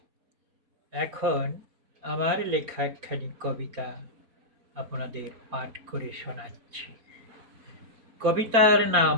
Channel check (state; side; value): late; left; 4.3 ms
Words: এখন আমার লেখা একখানি কবিতা আপনাদের পাঠ করে শোনাচ্ছি। কবিতার নাম